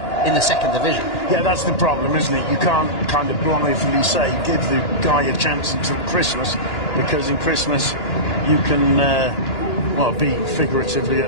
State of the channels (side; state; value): right; late; 2.9 ms